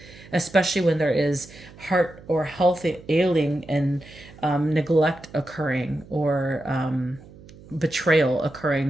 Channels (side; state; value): right; noise; hum, 21 dB below the sound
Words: especially when there is heart or health ailing and neglect occurring, or betrayal